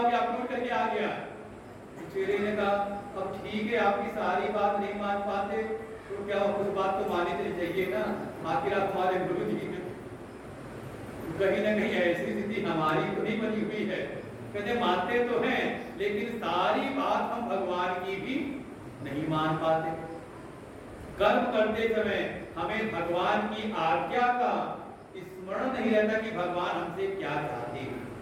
गया, आप उठ करके आ गया। चेले ने कहा, अब ठीक है आपकी सारी बात नहीं मान पाते तो क्या कुछ बात तो मानी चली चाहिए ना, आखिर आप हमारे गुरु जी हैं। कहीं ना कहीं ऐसी स्थिति हमारी तो नहीं बनी हुई है, कहते मानते तो हैं लेकिन सारी बात हम भगवान की भी नहीं मान पाते। कर्म करते समय हमें भगवान की आज्ञा का स्मरण नहीं रहता कि भगवान हमसे क्या चाहते हैं।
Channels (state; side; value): identical; both; correlation 1.00